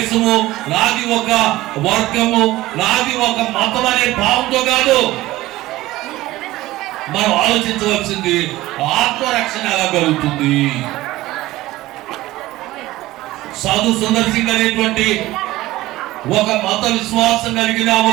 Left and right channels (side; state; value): left; quieter; 17.3 dB